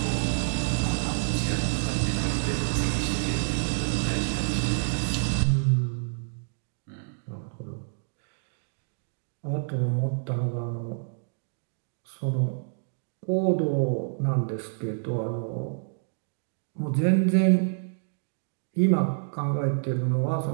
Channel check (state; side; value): silent; left; digital silence